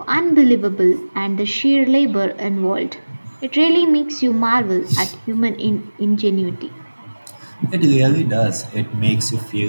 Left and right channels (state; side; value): inverted; both; correlation -1.00